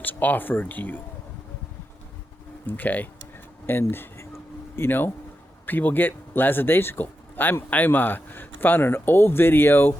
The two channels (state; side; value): normal; both; correlation 0.88